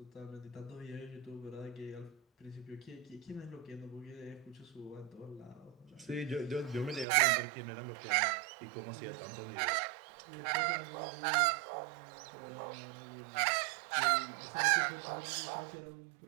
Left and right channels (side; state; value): left; drops out; at 7.1 s